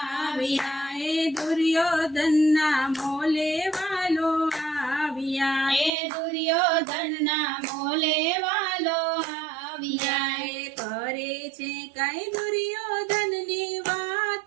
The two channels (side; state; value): left; drops out; at 5.9 s